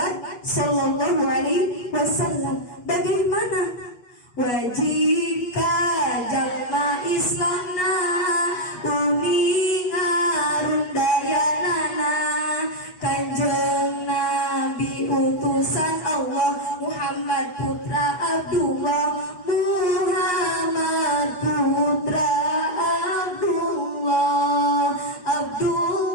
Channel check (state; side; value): late; right; 8.3 ms